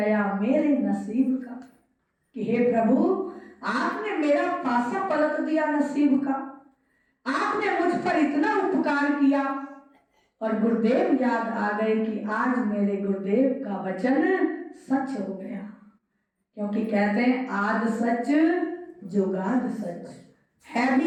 मेरे नसीब का। कि हे प्रभु आपने मेरा पासा पलट दिया नसीब का, आपने मुझ पर इतना उपकार किया। और गुरुदेव याद आ गए कि आज मेरे गुरुदेव का वचन सच हो गया। क्योंकि कहते हैं आद सच जुगाद सच, है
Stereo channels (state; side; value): identical; both; correlation 1.00